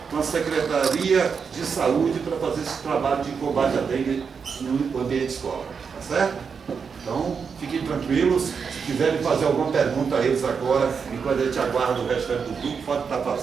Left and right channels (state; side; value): quieter; left; 6.0 dB